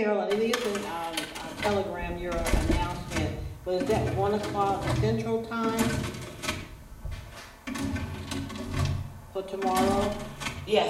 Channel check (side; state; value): both; identical; correlation 1.00